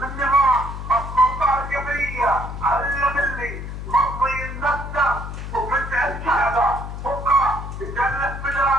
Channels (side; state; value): left; noise; hum, 8 dB below the sound